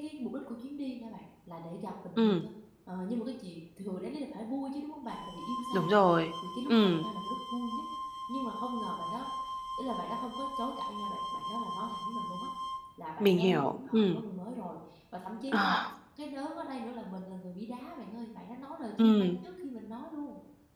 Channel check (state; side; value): identical; both; correlation 1.00